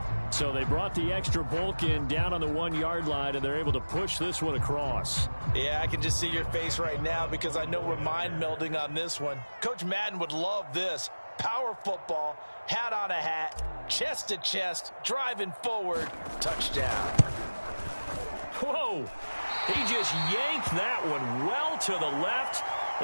So they brought the extra bulk in down on the 1-yard line, and they're able to push this one across. Yeah, I can just see your face right now because I know we're mind melding on this one. Coach Madden would love this. Power football, hat on a hat, chest to chest, driving forward, touchdown. Whoa! He just yanked that one well to the left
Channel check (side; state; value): both; inverted; correlation -1.00